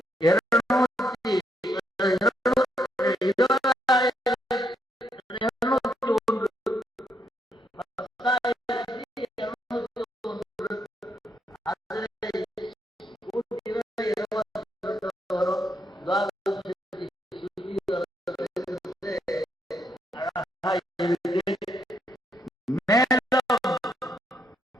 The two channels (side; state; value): both; normal; correlation 0.76